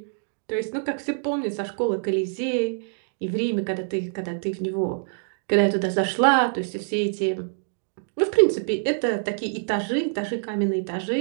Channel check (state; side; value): silent; left; digital silence